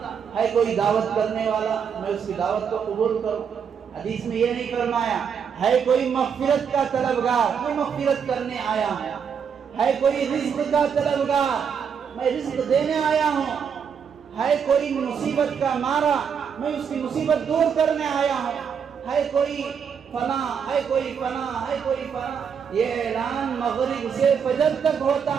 ہے کوئی دعوت کرنے والا، میں اس کی دعوت کو قبول کروں۔ حدیث میں یہ نہیں فرمایا ہے کوئی مغفرت کا طلبگار، میں مغفرت کرنے آیا ہوں، ہے کوئی رزق کا طلبگار، میں رزق دینے آیا ہوں، ہے کوئی مصیبت کا مارا، میں اس کی مصیبت دور کرنے آیا ہوں، ہے کوئی فنا، ہے کوئی فنا، ہے کوئی فنا۔ یہ اعلان مغرب سے فجر تک ہوتا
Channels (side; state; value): left; quieter; 7.1 dB